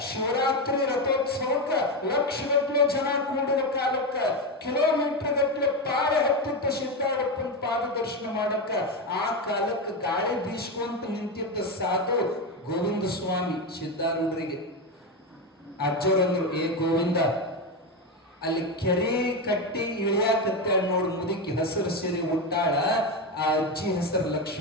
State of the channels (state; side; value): normal; both; correlation 0.13